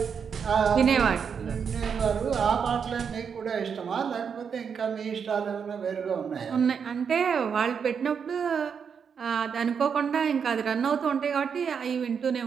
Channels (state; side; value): quieter; left; 6.7 dB